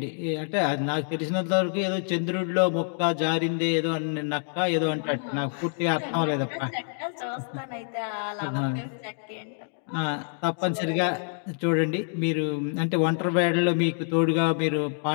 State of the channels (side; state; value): right; silent; 60 dB below the other